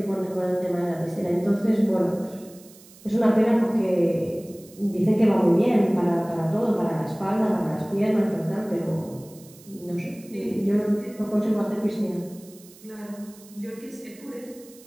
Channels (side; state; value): right; noise; hiss, 23 dB below the sound